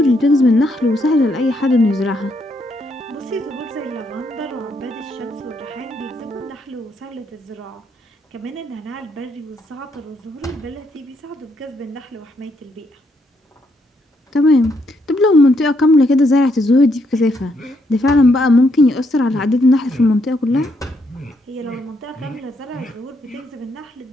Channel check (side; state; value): both; normal; correlation 0.75